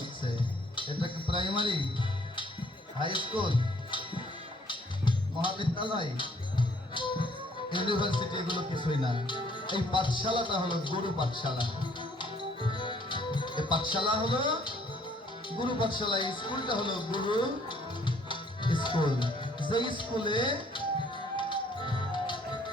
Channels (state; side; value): normal; both; correlation 0.62